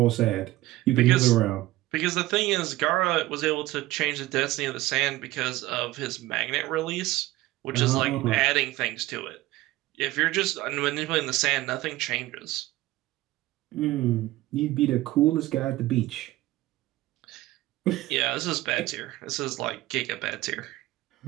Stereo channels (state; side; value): quieter; left; 17.2 dB